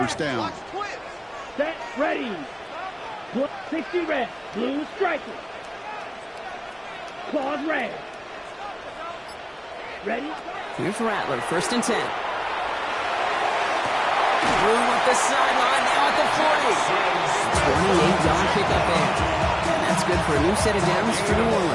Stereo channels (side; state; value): both; identical; correlation 1.00